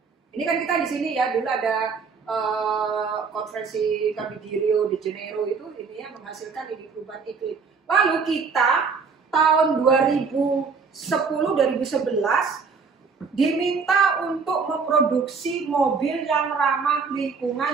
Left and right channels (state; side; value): quieter; left; 5.2 dB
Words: Ini kan kita di sini ya, dulu ada konferensi kami di Rio de Janeiro itu ini ya menghasilkan ini perubahan iklim. Lalu kita tahun 2010-2011 diminta untuk memproduksi mobil yang ramah